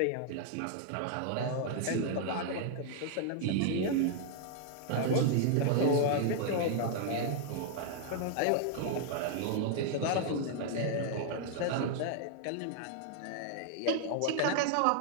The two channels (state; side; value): different; both; correlation -0.01